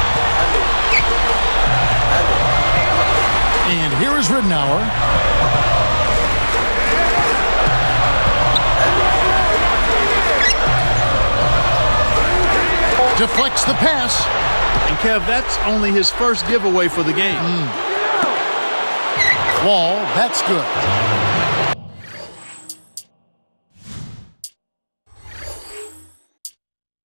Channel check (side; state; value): both; inverted; correlation -1.00